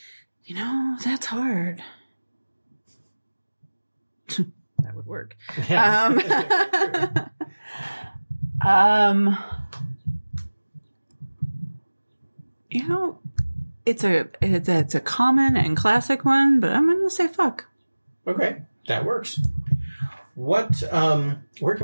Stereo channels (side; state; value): both; inverted; correlation -1.00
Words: That's hard. That would work. Yeah. It's a common and classic one, but I'm going to say fuck. Okay, that works. What? Where